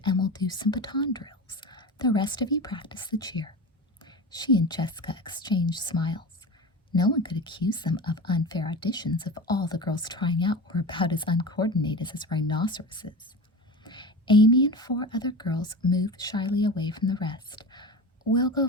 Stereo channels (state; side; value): normal; both; correlation 0.29